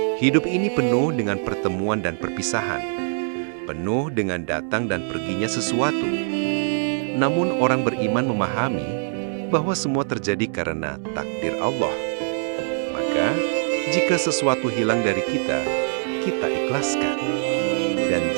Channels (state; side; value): silent; left; 63 dB below the other